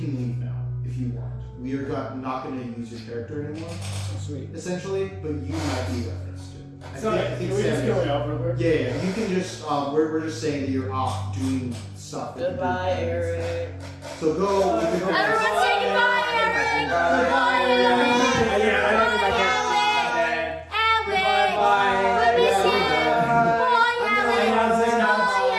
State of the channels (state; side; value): identical; both; correlation 1.00